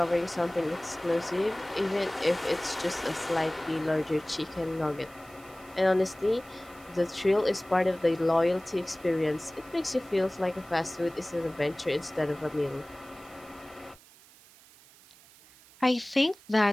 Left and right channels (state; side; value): noise; right; hiss, 24 dB below the sound